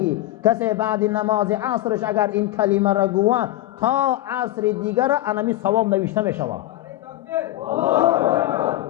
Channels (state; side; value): quieter; right; 15.5 dB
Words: کسی بعد نماز عصرش اگر این کلمه را گوه تا عصر دیگر انمی ثواب نوشته می شود.